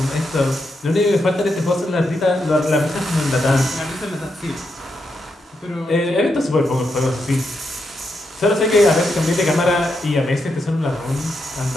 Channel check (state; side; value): normal; both; correlation 0.83